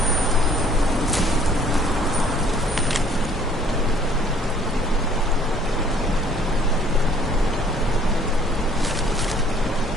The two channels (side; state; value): both; normal; correlation 0.58